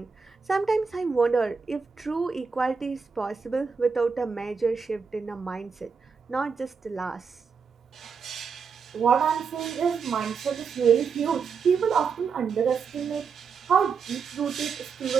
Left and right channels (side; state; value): left; quieter; 5.7 dB